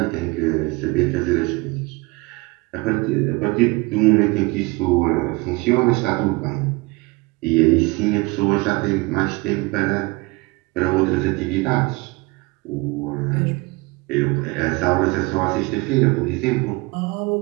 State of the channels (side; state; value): left; quieter; 24.8 dB